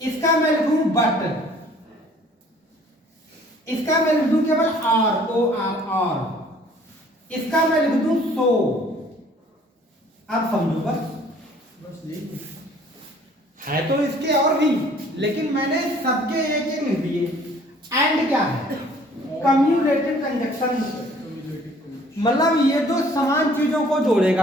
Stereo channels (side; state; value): both; normal; correlation 0.55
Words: इसका मैं लिखूं बट, इसका मैं लिख दूं केवल आर, ओ आर आर, इसका मैं लिख दूं सो। आप समझो बस है तो इसके और भी, लेकिन मैंने सबके एक एक लिख दिए। एंड क्या है? कम्युलेटिव कंजक्शन, मतलब ये दो समान चीजों को